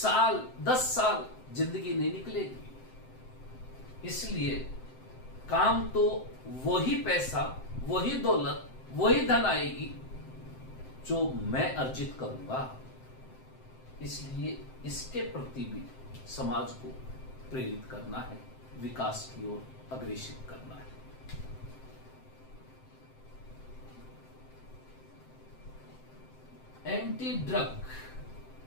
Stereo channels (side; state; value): right; late; 7.7 ms